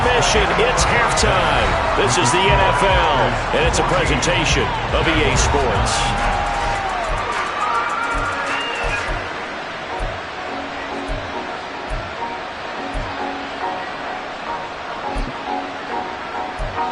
It's halftime. This is the NFL, and it's a presentation of EA Sports.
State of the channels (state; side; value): identical; both; correlation 1.00